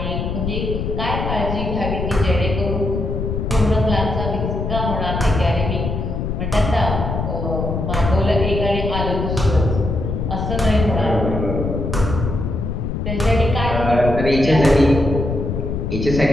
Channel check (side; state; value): left; noise; rumble, 2 dB below the sound